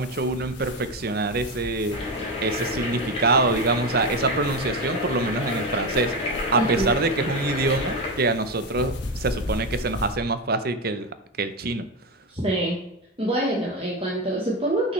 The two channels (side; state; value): both; normal; correlation 0.15